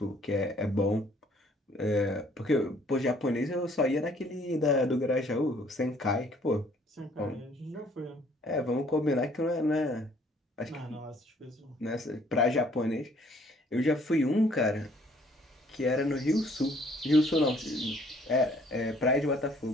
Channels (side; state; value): both; normal; correlation 0.60